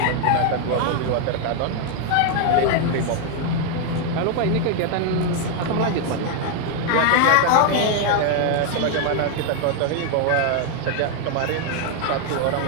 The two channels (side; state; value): both; different; correlation 0.00